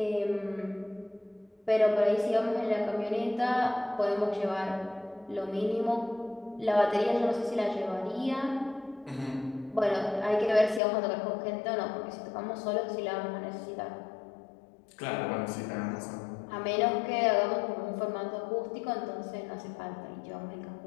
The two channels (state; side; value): drops out; right; at 10.8 s